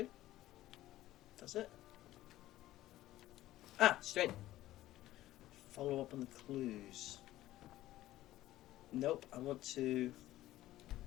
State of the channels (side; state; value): right; quieter; 15.2 dB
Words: Does it? Ah, straight. Follow up on the clues. Nope, I want to...